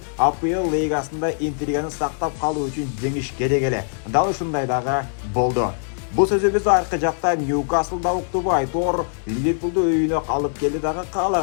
АПЛ лигасында интриганы сактап калуу үчүн жеңиш керек эле. Дал ушундай дагы болду. Бул сөзүбүз аркы жакта Ньюкаслда уктубу айтор Ливерпулду үйүнө алып келди дагы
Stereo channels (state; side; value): silent; right; digital silence